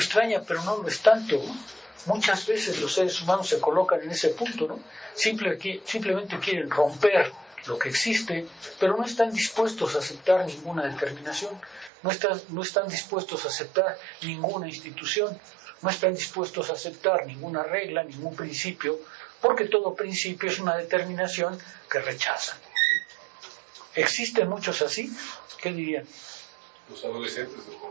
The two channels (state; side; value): drops out; left; at 11.9 s